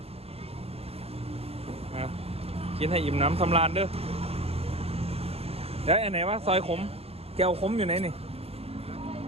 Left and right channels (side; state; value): left; late; 0.29 ms